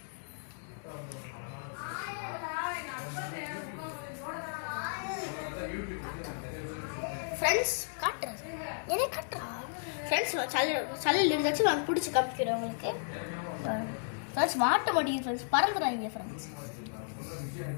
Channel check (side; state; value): right; silent; digital silence